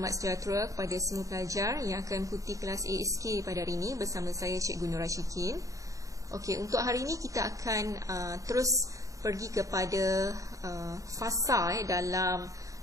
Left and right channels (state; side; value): late; left; 0.16 ms